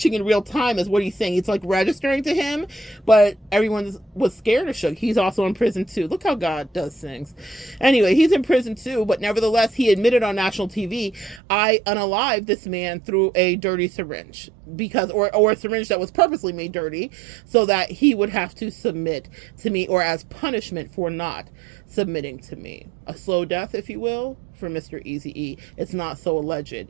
in real time is what he's saying. It's like registering to him, but everyone was scared of Suge. He's also in prison too. Look how God does things. Anyway, he's in prison too, but nevertheless, he admitted on national TV, I unalived this man through a dirty syringe because, or a syringe that was purposely made dirty so that he would have to submit to me, or as punishment for not submitting to me. A slow death, if you will, for Mr. Eazy-E. It's not so alleged.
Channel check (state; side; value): drops out; left; at 11.4 s